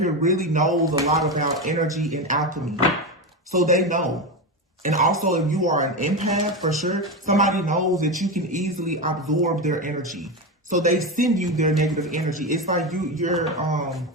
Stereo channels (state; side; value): normal; both; correlation 0.16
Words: here really knows a lot about energy and alchemy, so they know. And also, if you are an empath, for sure, somebody knows that you can easily absorb their energy. So they send you their negative energy. It's like you're